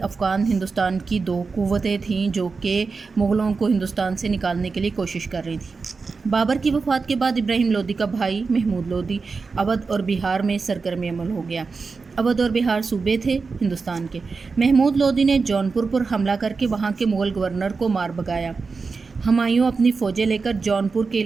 افغان ہندوستان کی دو قوتیں تھیں جو کہ مغلوں کو ہندوستان سے نکالنے کے لیے کوشش کر رہی تھیں۔ بابر کی وفات کے بعد ابراہیم لودھی کا بھائی محمود لودھی اودھ اور بہار میں سرگرم عمل ہو گیا۔ اودھ اور بہار صوبے تھے ہندوستان کے۔ محمود لودھی نے جونپور پر حملہ کر کے وہاں کے مغل گورنر کو مار بھگایا۔ ہمایوں اپنی فوجیں لے کر جونپور کے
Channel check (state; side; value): quieter; left; 4.6 dB